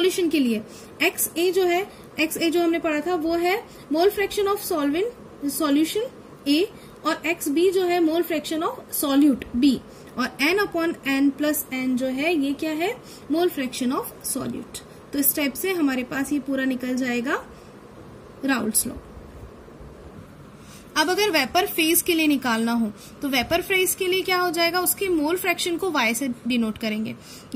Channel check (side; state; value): both; identical; correlation 1.00